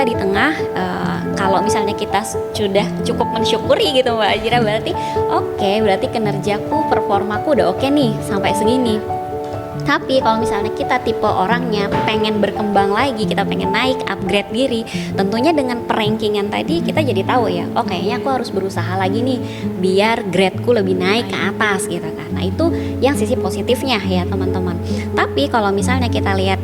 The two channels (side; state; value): both; identical; correlation 1.00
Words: di tengah, kalau misalnya kita sudah cukup mensyukuri gitu Mbak Ajira, berarti oke, berarti kinerjaku, performaku udah oke nih sampai segini. Tapi kalau misalnya kita tipe orangnya pengen berkembang lagi, kita pengen naik, upgrade diri, tentunya dengan perankingan tadi kita jadi tahu ya, oh kayaknya aku harus berusaha lagi nih biar gradeku lebih naik ke atas gitu kan. Nah itu yang sisi positifnya ya teman-teman. Tapi kalau misalnya kita